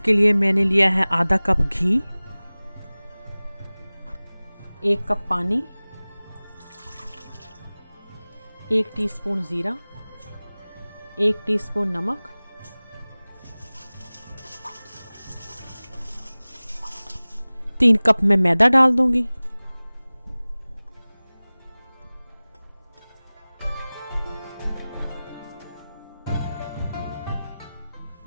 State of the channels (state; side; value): inverted; both; correlation -0.99